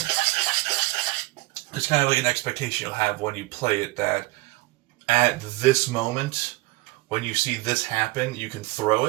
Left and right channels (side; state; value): left; quieter; 22.1 dB